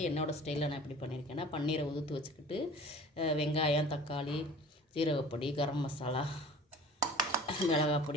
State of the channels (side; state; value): both; normal; correlation 0.45